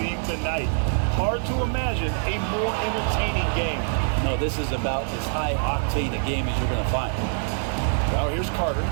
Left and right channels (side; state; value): left; silent; digital silence